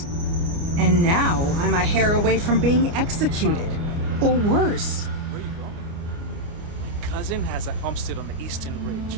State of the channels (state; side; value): late; left; 29 ms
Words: And now I'm a hair away from being executed. Or worse. Where you going? My cousin has a homestead on the Eastern